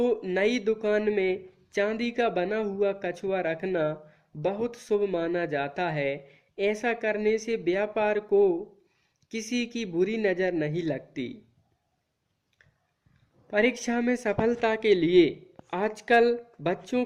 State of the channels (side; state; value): both; identical; correlation 1.00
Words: नई दुकान में चांदी का बना हुआ कछुआ रखना बहुत शुभ माना जाता है। ऐसा करने से व्यापार को किसी की बुरी नजर नहीं लगती। परीक्षा में सफलता के लिए आजकल बच्चों